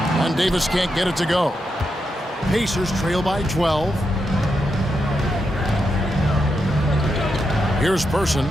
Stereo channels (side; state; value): both; normal; correlation 0.84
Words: And Davis can't get it to go. Pacers trail by 12. Here's Person.